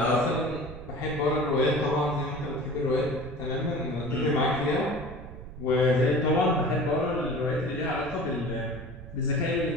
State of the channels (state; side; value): noise; right; rumble, 13 dB below the sound